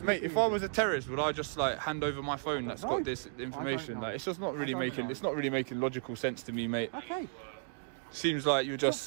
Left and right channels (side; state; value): left; silent; digital silence